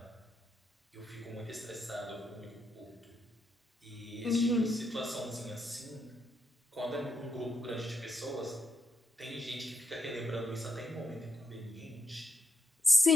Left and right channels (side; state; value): both; normal; correlation 0.81